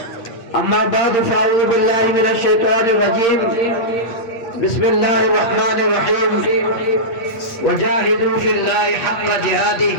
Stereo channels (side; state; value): right; late; 8.7 ms